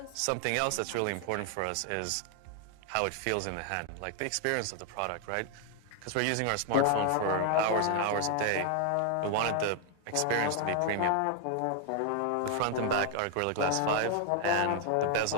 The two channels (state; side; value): different; both; correlation 0.00